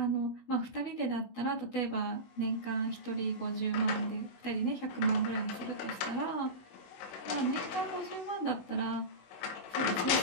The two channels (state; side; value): late; right; 16 ms